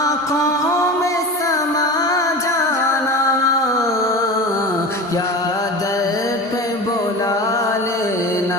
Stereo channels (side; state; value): both; normal; correlation 0.30